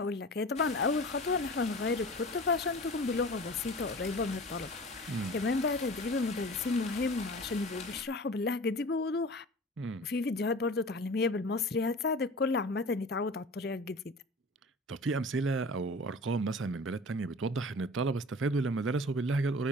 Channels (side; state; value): both; normal; correlation 0.39